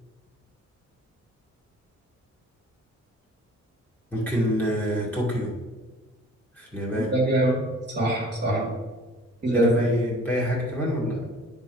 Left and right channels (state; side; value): normal; both; correlation 0.50